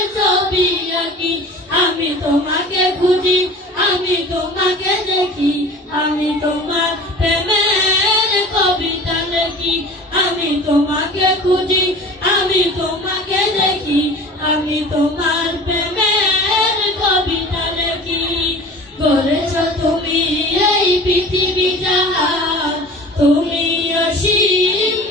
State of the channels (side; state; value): both; normal; correlation 0.40